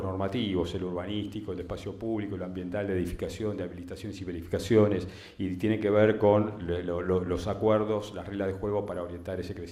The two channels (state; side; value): identical; both; correlation 1.00